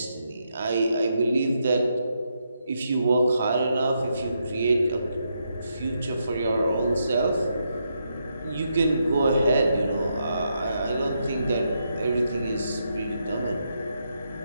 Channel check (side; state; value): both; inverted; correlation -0.81